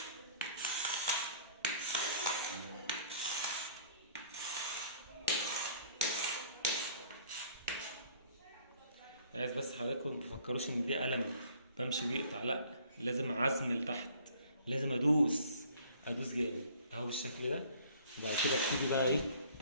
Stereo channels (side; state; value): both; inverted; correlation -0.55